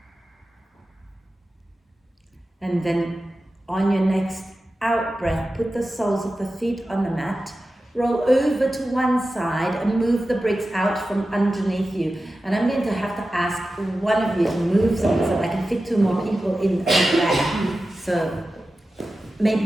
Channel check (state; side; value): normal; both; correlation 0.94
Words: And then on your next out breath, put the soles of the feet on the mat. Roll over to one side and move the bricks out from underneath you. And I'm going to have to ask one of you to move something so I can fit 2 more people in the back. So